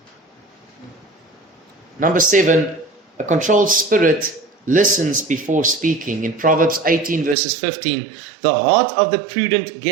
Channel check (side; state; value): left; drops out; at 7.4 s